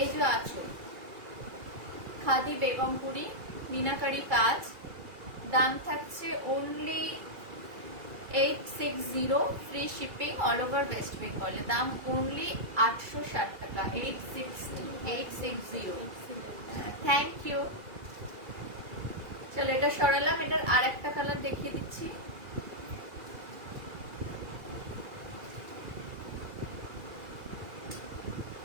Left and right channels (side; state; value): left; late; 2.4 ms